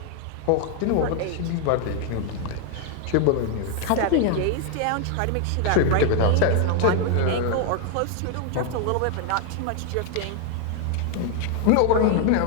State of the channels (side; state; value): both; different; correlation 0.00